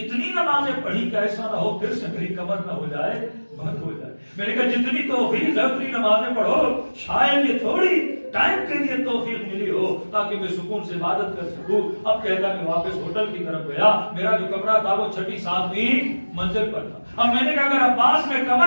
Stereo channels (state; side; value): inverted; both; correlation -1.00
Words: نمازیں پڑھی کہ ایسا نہ ہو پھر سے میری کمر نہ ہو جائے، بند ہو جائے. میں نے کہا جتنی توفیق ہے اتنی نمازیں پڑھو، شاید یہ تھوڑی ٹائم کے لیے توفیق ملی ہو تاکہ میں سکون سے عبادت کر سکوں. اب کہتا میں واپس ہوٹل کی طرف گیا، میرا جو کمرہ تھا وہ 6 7ویں منزل پر تھا. اب میں نے کہا اگر عباس میں